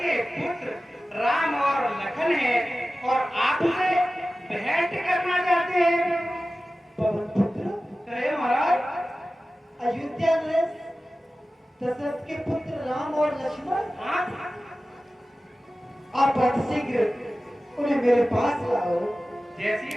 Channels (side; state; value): both; normal; correlation 0.95